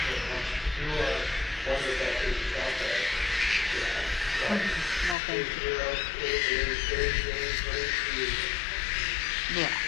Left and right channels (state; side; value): drops out; right; at 5.2 s